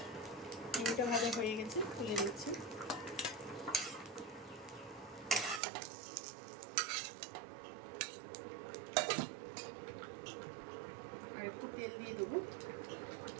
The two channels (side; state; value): left; drops out; at 5.6 s